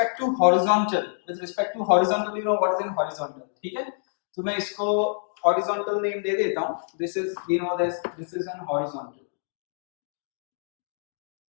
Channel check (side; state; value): right; silent; digital silence